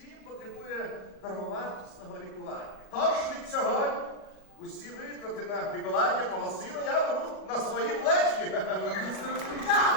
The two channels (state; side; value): late; right; 37 ms